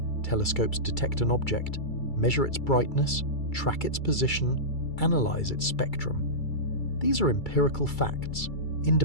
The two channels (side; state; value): right; late; 2.3 ms